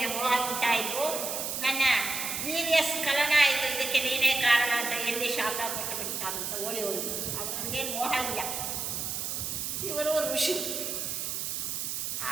ಮೋಹ ಉಂಟಾಯಿತು, ನನ್ನ ವೀರ್ಯ ಸ್ಖಲನ ಆಯಿತು, ಇದಕ್ಕೆ ನೀನೇ ಕಾರಣ ಅಂತ ಎಲ್ಲಿ ಶಾಪ ಕೊಟ್ಟು ಬಿಡ್ತಾರಂತ ಓಡಿ ಹೋಗಿದ್ದು. ಅವನಿಗೇನು ಮೋಹ ಇಲ್ಲ. ಇವರು ಋಷಿ.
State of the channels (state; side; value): noise; right; hiss, 3 dB below the sound